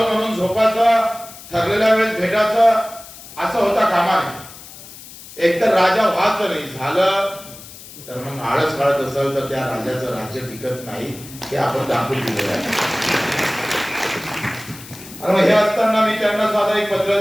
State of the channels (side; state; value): left; noise; hiss, 17 dB below the sound